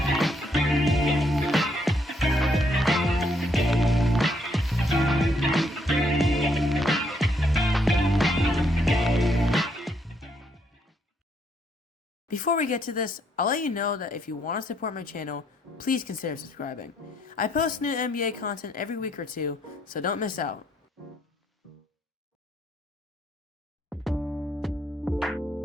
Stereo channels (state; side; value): normal; both; correlation 0.72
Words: Before we get to this, I'll let you know that if you want to support my channel, please consider subscribing. I post new NBA content every week or two, so don't miss out.